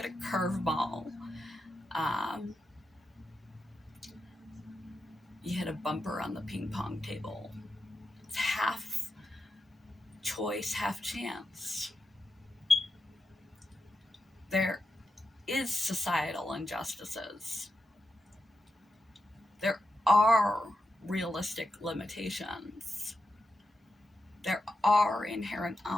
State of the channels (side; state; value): both; normal; correlation 0.88